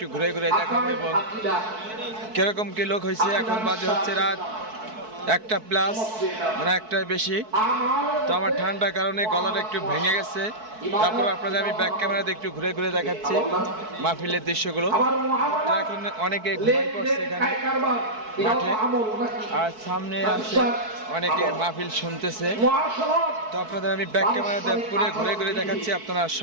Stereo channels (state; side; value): late; left; 4.6 ms